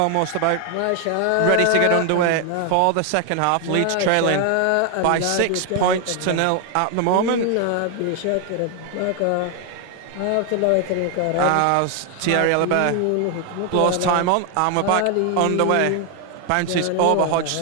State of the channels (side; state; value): both; different; correlation 0.00